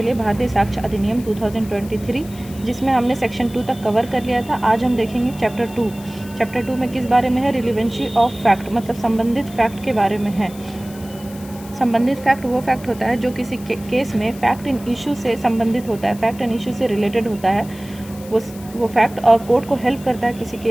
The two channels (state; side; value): noise; left; hiss, 19 dB below the sound